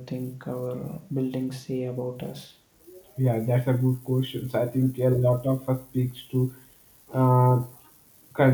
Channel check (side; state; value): both; identical; correlation 1.00